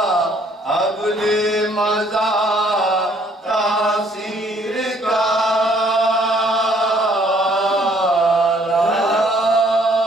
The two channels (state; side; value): normal; both; correlation 0.63